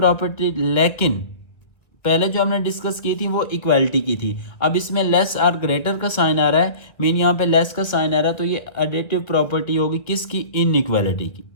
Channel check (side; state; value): right; late; 1.9 ms